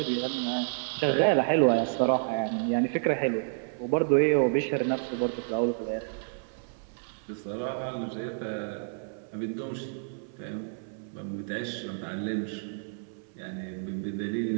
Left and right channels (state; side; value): silent; left; 58 dB below the other